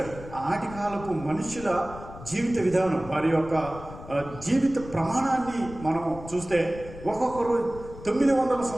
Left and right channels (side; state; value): left; noise; rumble, 14 dB below the sound